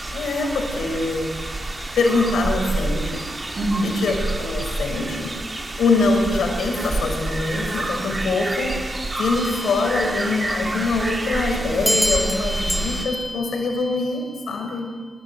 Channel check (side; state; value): both; normal; correlation 0.82